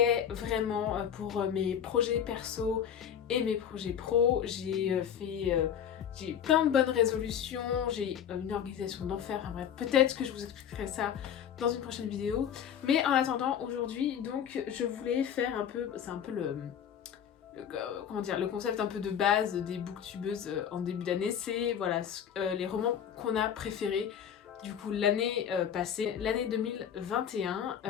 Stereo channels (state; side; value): quieter; right; 8.8 dB